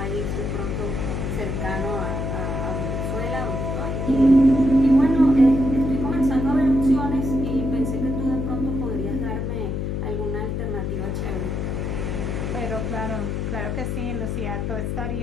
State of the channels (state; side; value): noise; left; hum, 2 dB below the sound